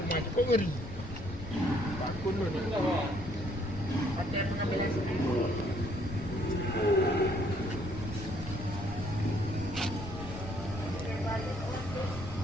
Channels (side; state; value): left; noise; rumble, 11 dB below the sound